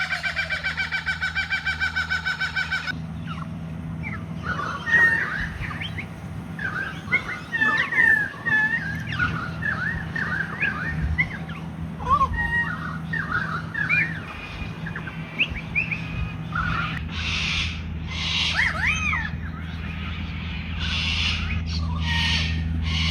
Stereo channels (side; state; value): both; identical; correlation 1.00